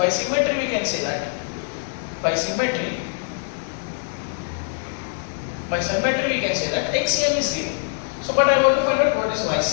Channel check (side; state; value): right; silent; digital silence